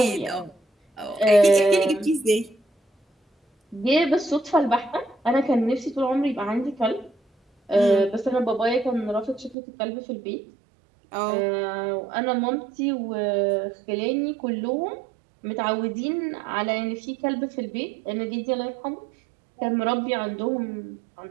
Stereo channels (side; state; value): left; drops out; at 9.6 s